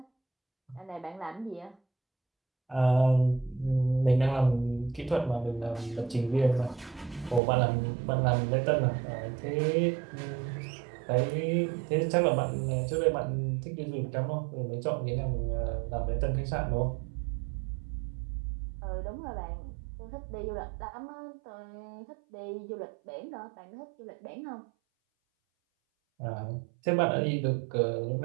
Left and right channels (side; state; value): left; drops out; at 7.4 s